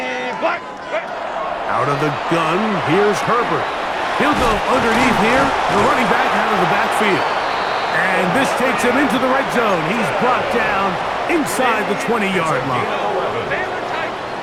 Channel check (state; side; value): identical; both; correlation 1.00